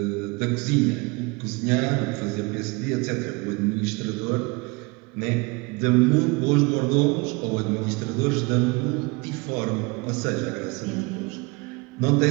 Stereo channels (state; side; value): quieter; left; 26.8 dB